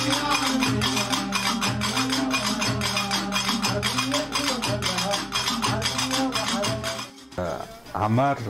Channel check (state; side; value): identical; both; correlation 1.00